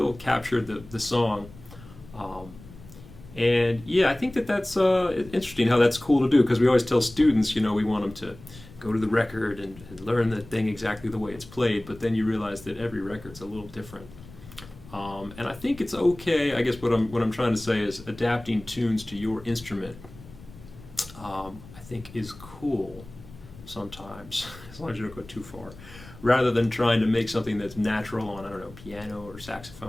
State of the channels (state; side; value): noise; left; rumble, 19 dB below the sound